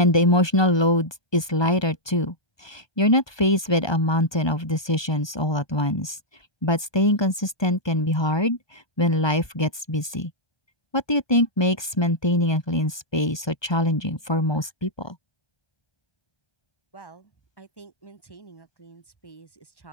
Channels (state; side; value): late; right; 1.2 ms